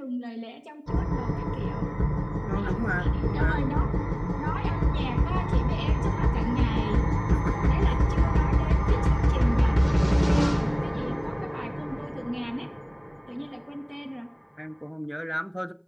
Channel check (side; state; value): both; identical; correlation 1.00